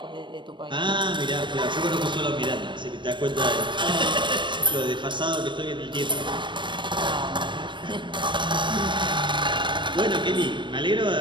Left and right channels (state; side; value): late; left; 0.23 ms